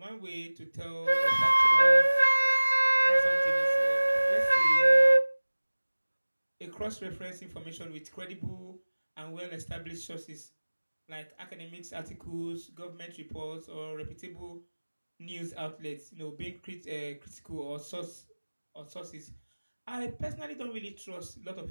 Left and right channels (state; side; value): inverted; both; correlation -1.00